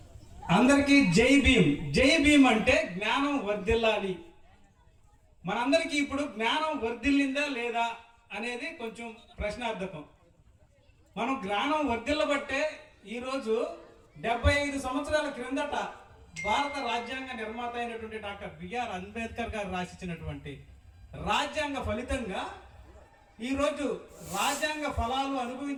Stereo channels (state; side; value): identical; both; correlation 1.00